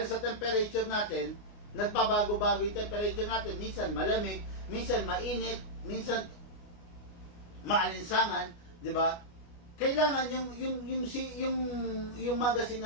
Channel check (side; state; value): right; late; 29 ms